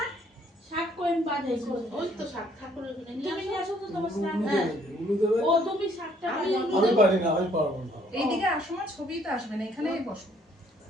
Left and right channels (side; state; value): both; normal; correlation 0.64